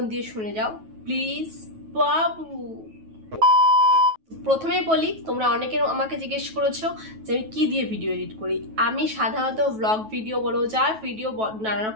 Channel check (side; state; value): left; late; 9.2 ms